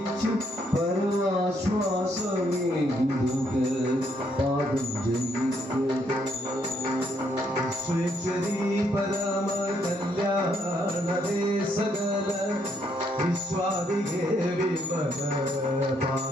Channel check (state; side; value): normal; both; correlation 0.72